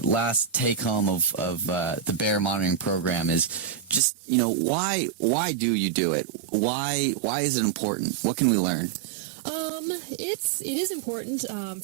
take home of the bear monitoring program is just, why do you do it? Why is it important? What can we learn? It is important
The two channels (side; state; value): left; drops out; at 4.0 s